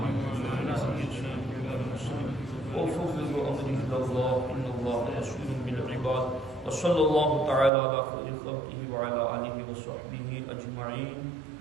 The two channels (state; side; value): drops out; left; at 7.7 s